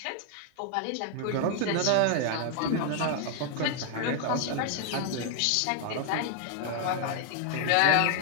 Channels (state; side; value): different; both; correlation 0.00